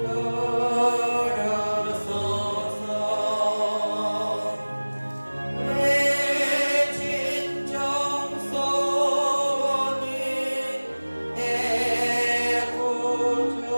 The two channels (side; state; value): both; inverted; correlation -1.00